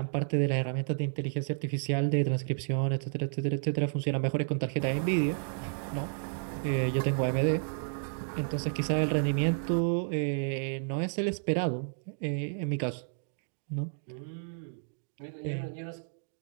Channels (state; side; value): silent; left; digital silence